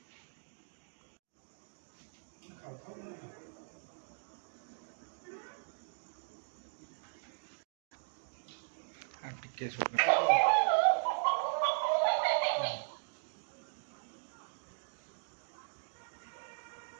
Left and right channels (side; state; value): left; silent; digital silence